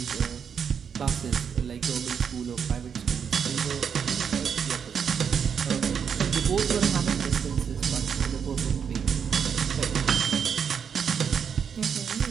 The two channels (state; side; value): quieter; left; 7.2 dB